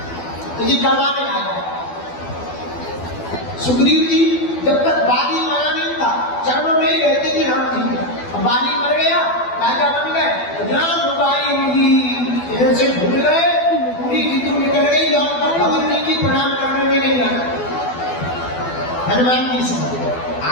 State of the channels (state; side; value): late; right; 12 ms